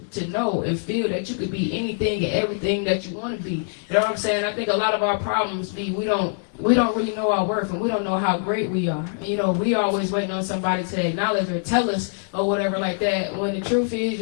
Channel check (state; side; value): silent; right; 62 dB below the other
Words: to know and feel that you could be anything and everything that you want to be. You know what I'm saying? I think a lot of our problems be we don't really know our worth, and we don't know how great we are. You know, we always waiting on somebody to acknowledge or tell us or whatever like that, when the truth is